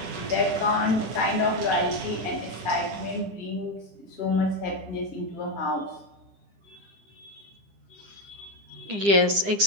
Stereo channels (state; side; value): late; left; 9.9 ms